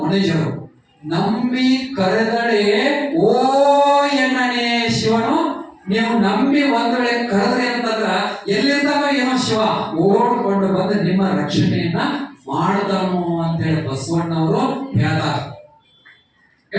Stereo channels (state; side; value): identical; both; correlation 1.00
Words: ನಂಬಿ ಕರೆದಡೆ ಓ ಎಣ್ಣನೆ ಶಿವನು. ನೀವು ನಂಬಿ ಒಂದ್ ವೇಳೆ ಕರೆದ್ರಿ ಅಂತಂದ್ರ ಎಲ್ಲಿರ್ತಾವ ಏನೋ ಶಿವ ಓಡ್ಕೊಂಡು ಬಂದು ನಿಮ್ಮ ರಕ್ಷಣೆಯನ್ನ ಮಾಡ್ತಾನು ಅಂತ ಹೇಳಿ ಬಸವಣ್ಣವರು ಹೇಳ್ತಾರಲ್ಲ.